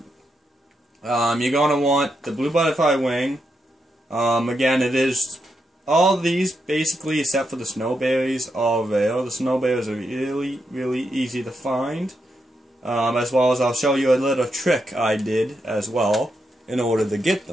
You're going to want the blue butterfly wing. Again, it is all these basically, except for the snowberries, are rare. The snowberries are really, really easy to find. As well as I'll show you a little trick I did as well in order to get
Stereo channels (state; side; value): normal; both; correlation 0.83